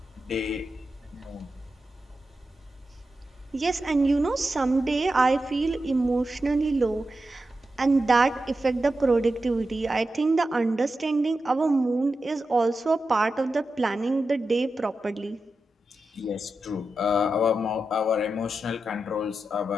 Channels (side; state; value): both; normal; correlation 0.90